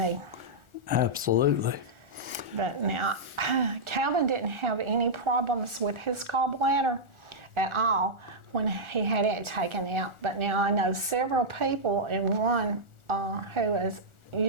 Absolutely. But now, Calvin didn't have any problems with his gallbladder at all when he had it taken out. But now I know several people, and one who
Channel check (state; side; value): late; left; 1.4 ms